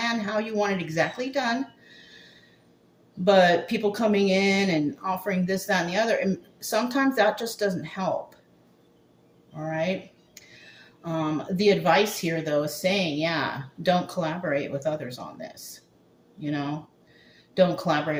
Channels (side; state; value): both; identical; correlation 1.00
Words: how you want it exactly done, but people coming in and offering this, that, and the other, and sometimes that just doesn't help. All right. The advice here, though, is saying, yeah, don't collaborate with others on this. Don't